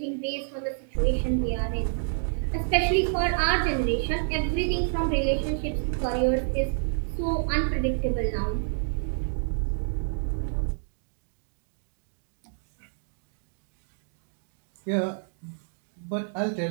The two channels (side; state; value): left; silent; digital silence